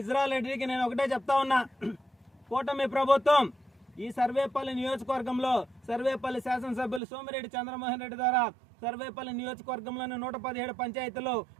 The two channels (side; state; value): left; drops out; at 7.0 s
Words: రెడ్డికి నేను ఒకటే చెప్తా ఉన్నా, కూటమి ప్రభుత్వం ఈ సర్వేపల్లి నియోజకవర్గంలో సర్వేపల్లి శాసనసభ్యులు సోమిరెడ్డి చంద్రమోహన్ రెడ్డి ద్వారా సర్వేపల్లి నియోజకవర్గంలోని 117 పంచాయతీలు